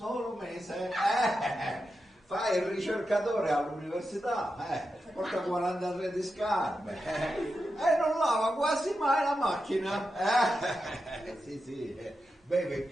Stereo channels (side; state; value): both; normal; correlation 0.89